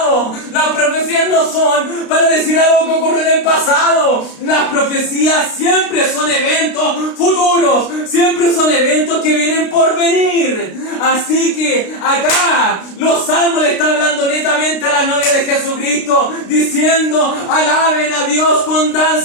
Las profecías no son para decir algo que ocurrió en el pasado. Las profecías siempre son eventos futuros, siempre son eventos que vienen por venir. Así que acá los Salmos le están hablando netamente a la novia de Jesucristo, diciendo, alaben a Dios con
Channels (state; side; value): late; right; 32 ms